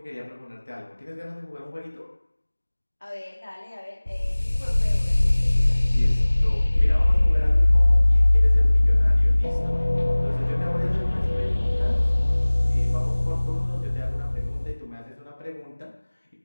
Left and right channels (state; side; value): inverted; both; correlation -1.00